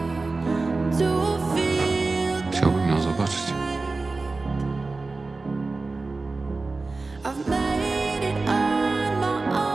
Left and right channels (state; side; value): quieter; left; 3.6 dB